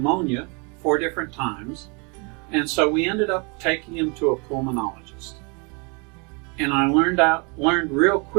4 different times, and so we ended up taking him to a pulmonologist. And I learned real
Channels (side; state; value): left; quieter; 32.5 dB